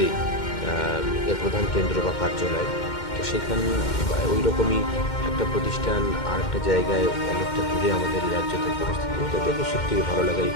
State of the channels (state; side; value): late; right; 2.1 ms